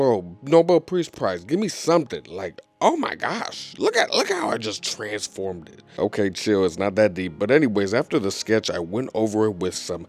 Nobel Peace Prize, give me something. Like, oh my gosh. Look how I just transformed it. Okay, chill, it's not that deep. But anyways, after the sketch, I went over it with some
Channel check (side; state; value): both; identical; correlation 1.00